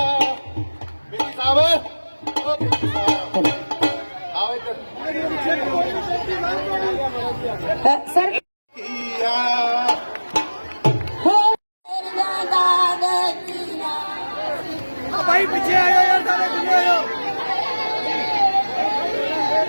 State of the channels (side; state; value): both; inverted; correlation -1.00